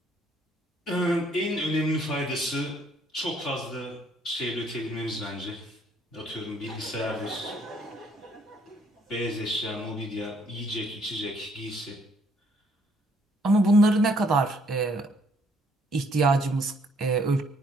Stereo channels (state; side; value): normal; both; correlation 0.66